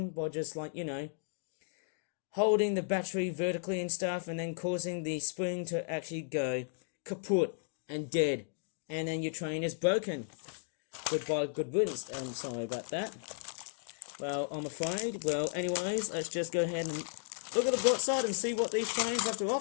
by just like, you know, holding the battery vertically and stuff and then causing the spring to actually go kaput and dead. And then your train is broken. Goodbye, good riddance. And sorry about that. Well, I'm afraid. Well, anyways, let's just go ahead and look at the bright side and see what these trains have to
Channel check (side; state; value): right; silent; digital silence